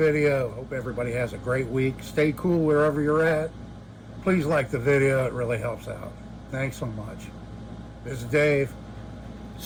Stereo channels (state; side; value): identical; both; correlation 1.00